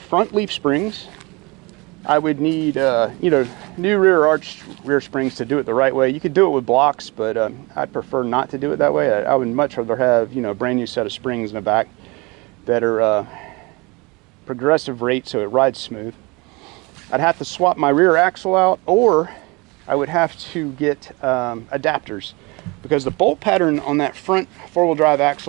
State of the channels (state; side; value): quieter; left; 26.1 dB